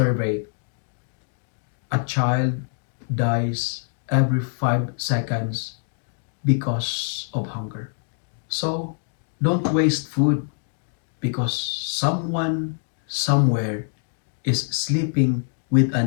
a child dies every 5 seconds because of hunger. So, don't waste food because someone somewhere is sleeping with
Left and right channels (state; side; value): silent; right; 62 dB below the other